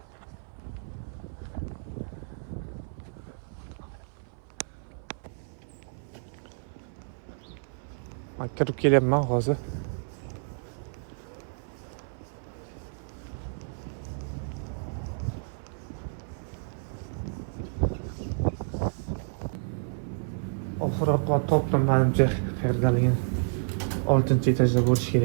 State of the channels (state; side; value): silent; left; 56 dB below the other